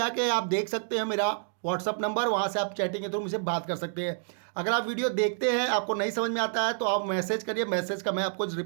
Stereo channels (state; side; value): silent; left; digital silence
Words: आप देख सकते हैं मेरा व्हाट्सअप नंबर, वहाँ से आप चैटिंग के थ्रू मुझसे बात कर सकते हैं। अगर आप वीडियो देखते हैं, आपको नहीं समझ में आता है तो आप मैसेज करिए, मैसेज का मैं आपको